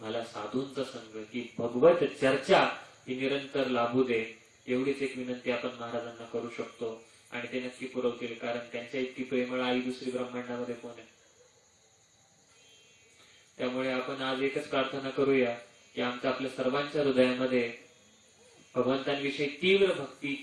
साधूंचा संग, की भगवत चर्चा ही निरंतर लाभू दे. एवढीच एक विनंती आपण महाराजांना करू शकतो. आणि ते नक्की पुरवतील. कारण त्यांच्या इतकी प्रेमळ आई दुसरी ब्रह्मांडामध्ये कोण आहे? त्यामुळे आपण आज एकच प्रार्थना करूया की आमच्या आपल्या सर्वांच्या हृदयामध्ये भगवंतांविषयी तीव्र भक्ती,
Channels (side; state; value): both; identical; correlation 1.00